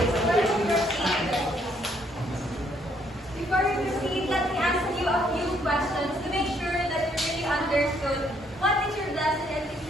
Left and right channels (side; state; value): both; normal; correlation 0.69